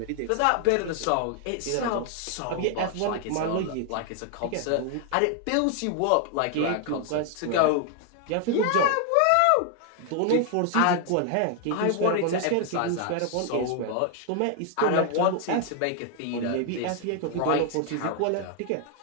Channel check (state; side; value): different; both; correlation 0.00